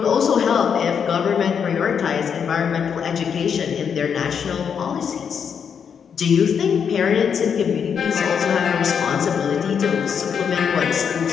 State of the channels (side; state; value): right; quieter; 7.2 dB